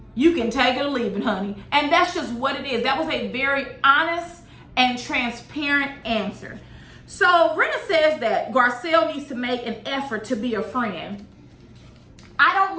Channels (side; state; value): both; identical; correlation 1.00